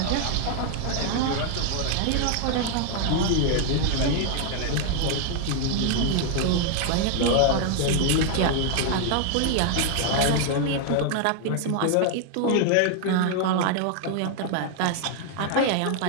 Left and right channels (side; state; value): both; different; correlation 0.00